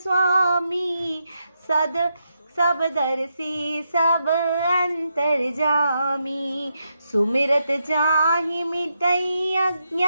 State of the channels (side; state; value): both; inverted; correlation -0.83